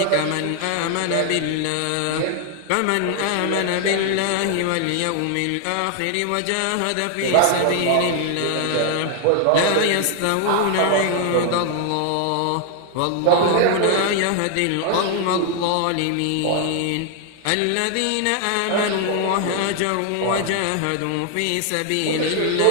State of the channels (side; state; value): both; different; correlation 0.00